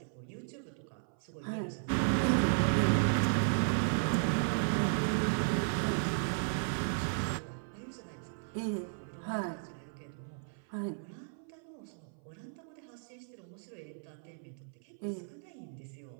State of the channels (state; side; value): silent; left; 54 dB below the other